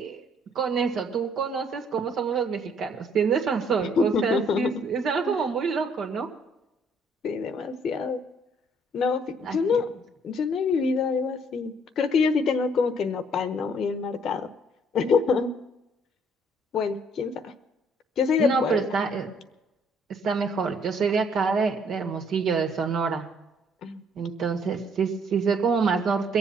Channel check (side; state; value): both; normal; correlation 0.63